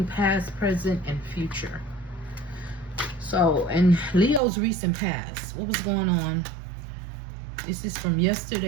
past, present, and future. So, in Leo's recent past, what was going on? This is from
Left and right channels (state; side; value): drops out; left; at 4.4 s